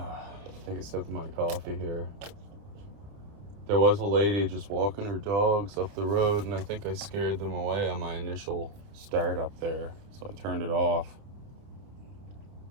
Take a sip of my coffee here. There was a lady just walking her dogs up the road, and I think I scared them away on my initial start up there, so I turned it off.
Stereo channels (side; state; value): left; late; 29 ms